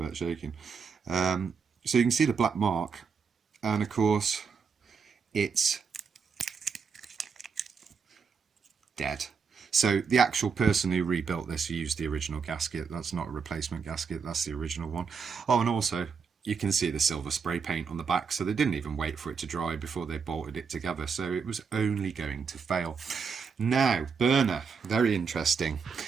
shaking. So you can see the black mark, and of course, it's dead. So the actual person who rebuilt this used the original gasket. That's not a replacement gasket, that's the original one. Oh, and also you can see the silver spray paint on the back, so they didn't even wait for it to dry before they bolted it together, so it was only going to fail. Now, burner, very interesting.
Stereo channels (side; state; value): left; quieter; 5.7 dB